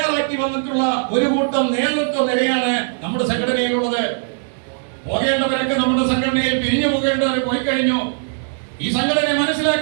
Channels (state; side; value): silent; left; digital silence